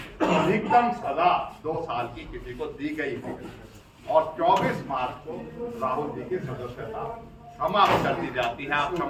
अधिकतम सजा 2 साल की किसी को दी गई है, और 24 मार्च को राहुल जी की सदस्यता समाप्त कर दी जाती है। आप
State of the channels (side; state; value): both; identical; correlation 1.00